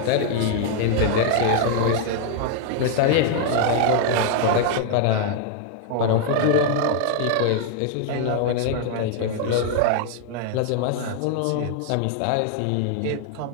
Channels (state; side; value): different; both; correlation 0.00